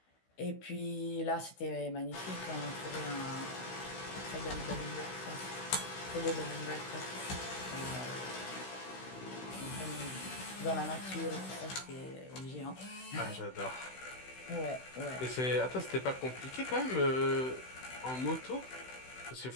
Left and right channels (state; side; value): late; right; 16 ms